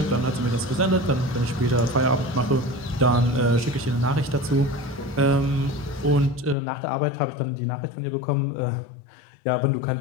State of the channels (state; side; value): drops out; right; at 6.6 s